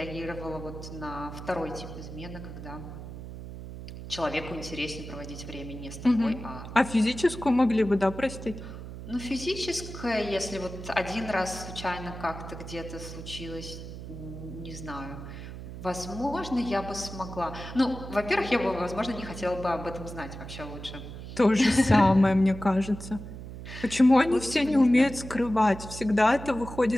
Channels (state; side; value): noise; right; hum, 11 dB below the sound